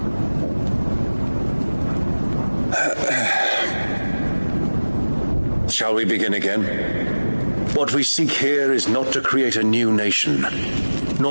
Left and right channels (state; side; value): inverted; both; correlation -1.00